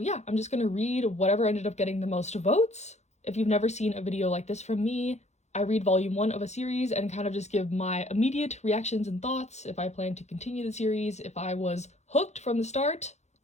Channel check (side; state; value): right; late; 0.33 ms